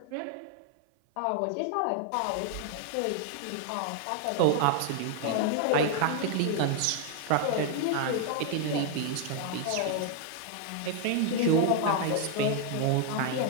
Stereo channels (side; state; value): both; different; correlation 0.00